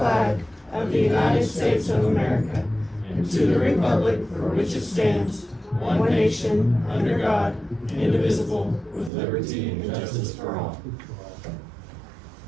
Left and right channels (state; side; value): drops out; left; at 9.1 s